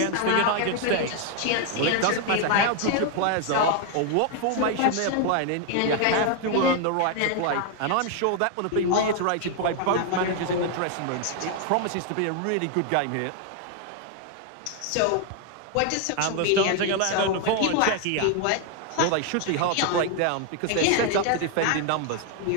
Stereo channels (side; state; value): both; different; correlation 0.00